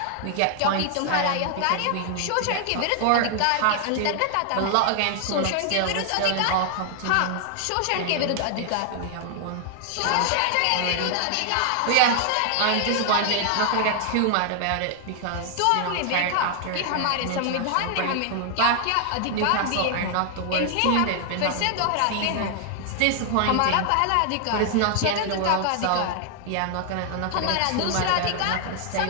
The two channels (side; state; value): both; different; correlation 0.00